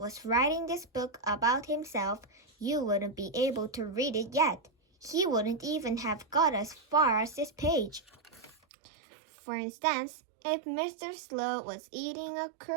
writing this book about himself, you wouldn't be able to read it yet. He wouldn't even have got as far as this page. For instance, if Mr. Slow was eating a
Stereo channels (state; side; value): drops out; left; at 8.6 s